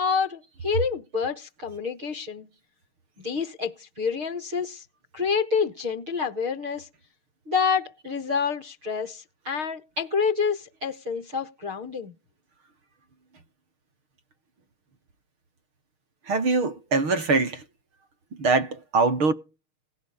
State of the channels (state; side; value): late; left; 6.5 ms